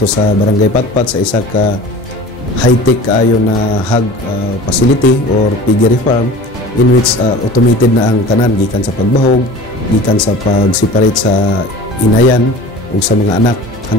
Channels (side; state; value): both; normal; correlation 0.39